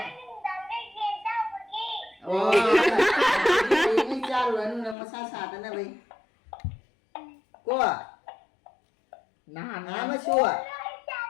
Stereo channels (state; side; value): drops out; right; at 5.0 s